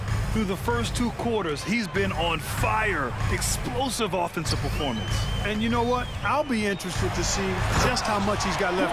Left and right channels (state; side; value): identical; both; correlation 1.00